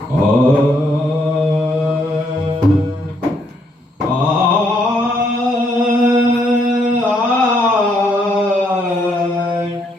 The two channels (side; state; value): both; normal; correlation 0.72